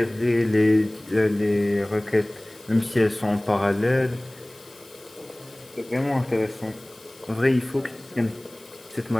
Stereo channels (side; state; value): left; noise; hiss, 25 dB below the sound